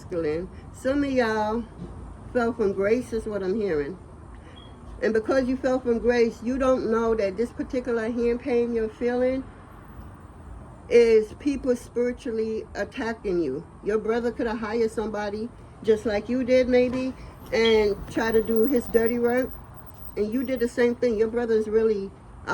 Some of y'all fell from grace is what I'm hearing. And because you fell from grace, you don't know that this particular hand pain you're feeling is people spiritually attacking you. Your brother could have hired somebody just like you did maybe and try to do his dirty work. And you did the same thing. Your brother is really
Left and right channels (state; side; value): identical; both; correlation 1.00